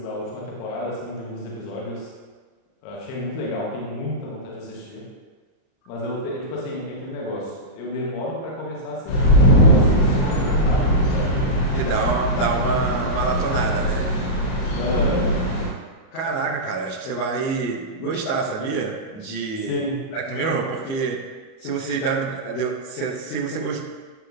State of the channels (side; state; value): right; late; 37 ms